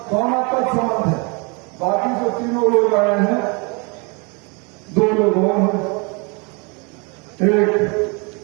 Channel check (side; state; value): left; quieter; 31.3 dB